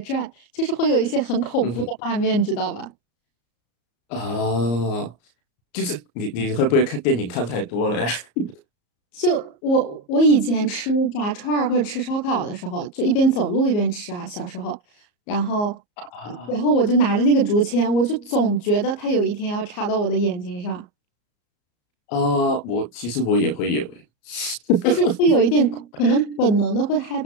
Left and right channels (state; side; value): late; right; 34 ms